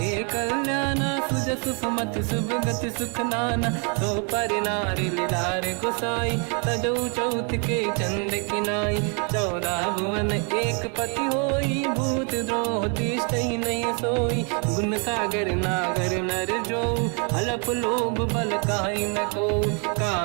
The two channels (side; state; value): left; quieter; 37.8 dB